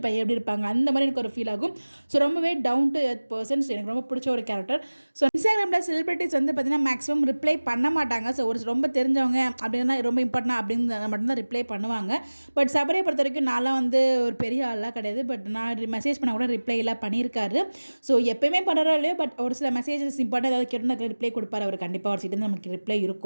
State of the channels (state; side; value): inverted; both; correlation -1.00